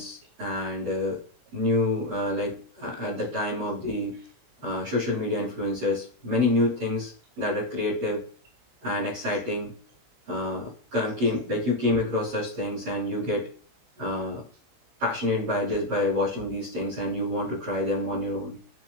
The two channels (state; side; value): late; left; 16 ms